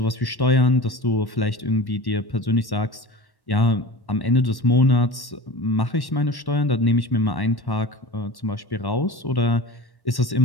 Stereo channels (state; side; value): late; right; 1.1 ms